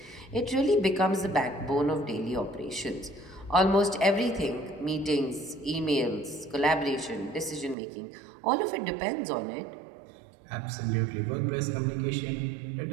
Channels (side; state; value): left; drops out; at 7.8 s